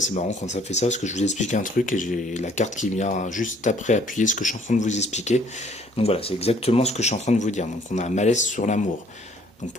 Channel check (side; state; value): both; normal; correlation 0.60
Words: marrant quand ça fait ça, parce que je vous explique un truc et j'ai la carte qui vient juste après appuyer ce que je suis en train de vous expliquer. Donc voilà, c'est exactement ce que je suis en train de vous dire. Donc on a un malaise sur l'amour. Donc